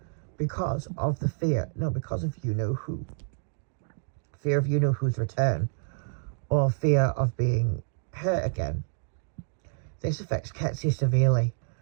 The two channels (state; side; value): silent; left; digital silence